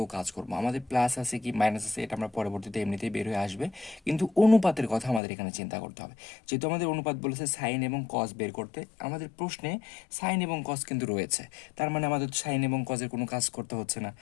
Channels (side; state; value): right; drops out; at 5.2 s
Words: কাজ করব। আমাদের প্লাস আছে কি মাইনাস আছে এটা আমরা পরবর্তীতে এমনিতেই বের হয়ে আসবে, কিন্তু অনুপাতের কথা আমাদের এখানে চিন্তা করতে হবে। যেহেতু আমাদের অনুপাত বলেছে সাইন এবং কজ বের করতে, আমাদের প্রশ্নে সাইন এবং কজ কিন্তু রয়েছে, তার মানে আমাদের সাইন এবং কজের কোনো কাজ করতে হচ্ছে না।